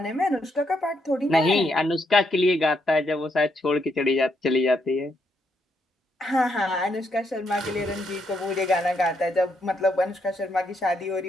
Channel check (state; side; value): normal; both; correlation 0.77